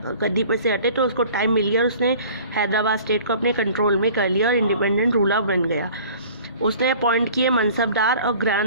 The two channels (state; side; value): inverted; both; correlation -0.47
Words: गद्दी पर से हटे तो उसको टाइम मिल गया और उसने हैदराबाद स्टेट को अपने कंट्रोल में कर लिया और इंडिपेंडेंट रूलर बन गया। उसने अपॉइंट किए मनसबदार और